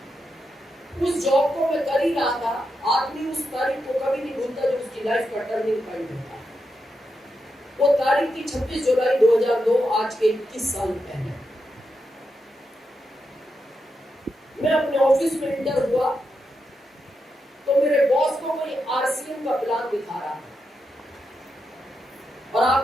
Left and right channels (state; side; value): normal; both; correlation 0.86